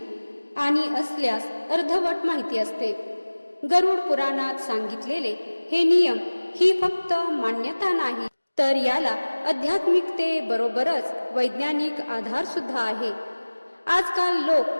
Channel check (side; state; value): both; inverted; correlation -1.00